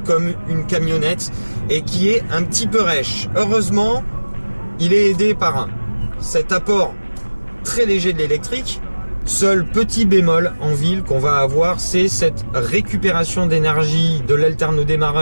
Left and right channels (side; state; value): both; inverted; correlation -1.00